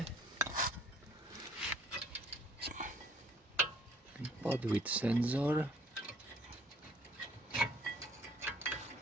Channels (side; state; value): both; normal; correlation 0.59